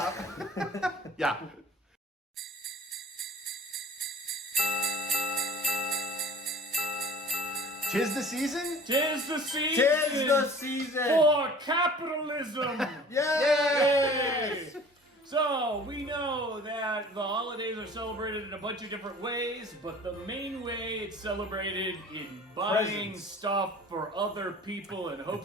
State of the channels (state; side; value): normal; both; correlation 0.46